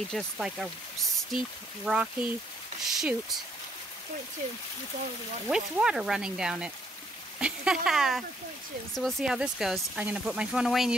just like a steep, rocky chute 0.2 with all of the water. with water running down it. It's on there for 0.2. So we'll see how this goes. I'm going to put my phone away and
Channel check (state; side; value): normal; both; correlation 0.69